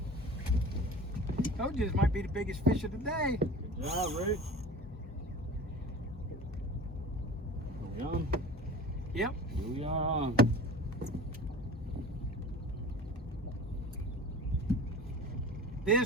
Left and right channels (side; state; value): both; normal; correlation 0.38